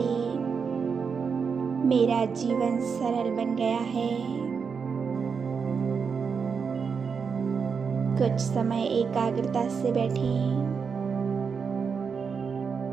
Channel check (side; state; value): left; quieter; 5.9 dB